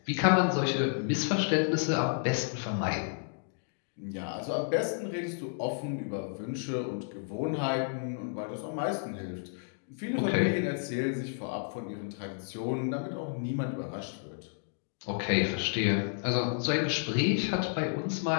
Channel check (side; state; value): right; silent; digital silence